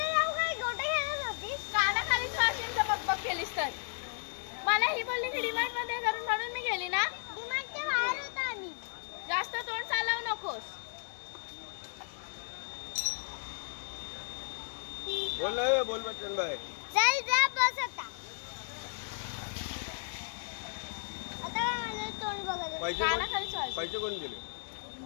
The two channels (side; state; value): right; silent; digital silence